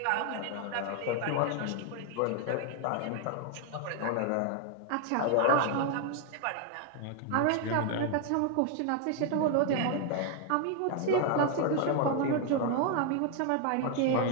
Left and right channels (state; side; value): different; both; correlation 0.00